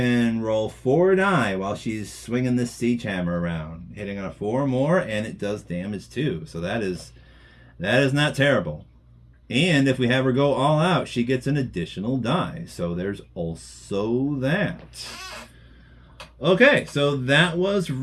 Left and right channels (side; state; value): both; identical; correlation 1.00